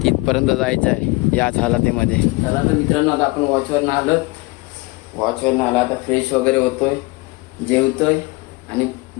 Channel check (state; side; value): quieter; right; 23.9 dB